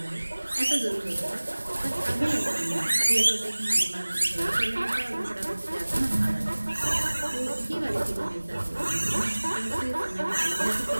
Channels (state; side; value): inverted; both; correlation -1.00